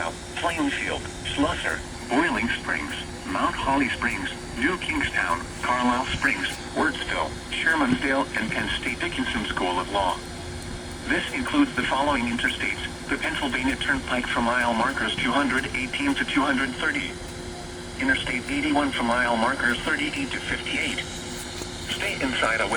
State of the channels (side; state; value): both; identical; correlation 1.00